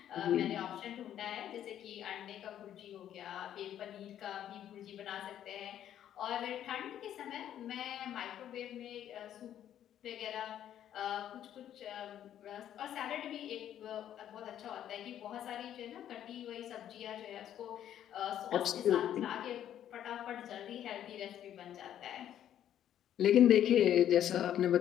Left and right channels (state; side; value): quieter; right; 10.8 dB